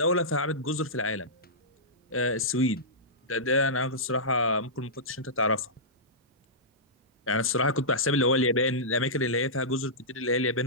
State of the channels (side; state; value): both; normal; correlation -0.16